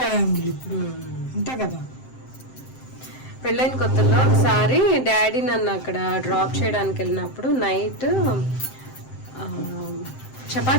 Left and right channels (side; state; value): right; late; 7.7 ms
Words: అంతే కదా. పెళ్ళైన కొత్తలో ఒకసారి డాడీ నన్ను అక్కడ డ్రాప్ చేయడానికి వెళ్ళినప్పుడు నైట్